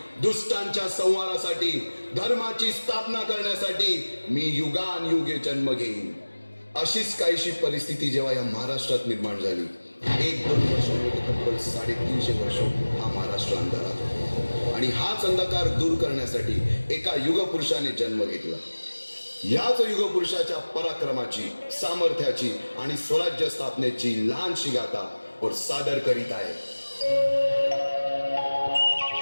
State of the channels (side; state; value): both; inverted; correlation -1.00